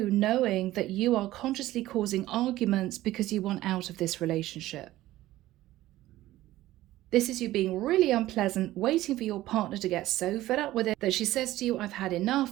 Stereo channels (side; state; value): left; quieter; 15.7 dB